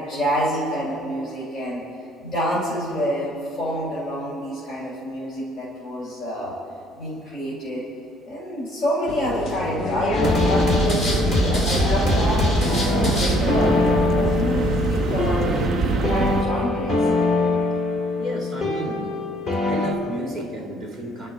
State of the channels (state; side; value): normal; both; correlation 0.63